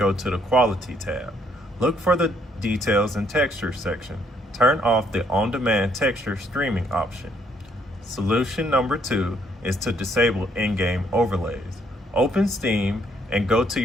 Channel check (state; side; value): normal; both; correlation 0.68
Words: to the Quality tab. Look for the Details and Texture section. Turn off the on-demand texture streaming option. Solution number 2 is to disable in-game overlays. Open Steam and go to